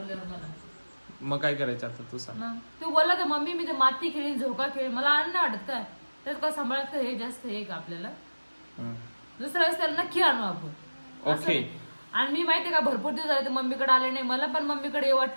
मला. मग काय करायचं आता तू सांग. तू बोलला तर मम्मी मी ते माती खेळीन झोका खेळ मला आणणं वाटत काय त्यात काय सांभाळत का हे जास्त हे का आपल्याला. दुसऱ्या वेळेस त्याला नक्की आणू आपण. ओके. आणि मी माहितीये का भरपूर दिवस झाले ते मम्मीकडे आले नाही. मला पण मम्मीकडे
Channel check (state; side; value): inverted; both; correlation -1.00